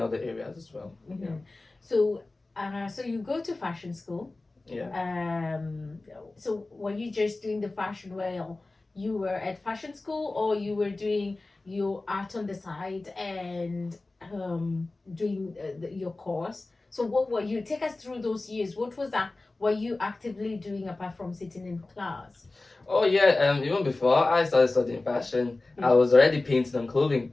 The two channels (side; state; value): right; quieter; 3.2 dB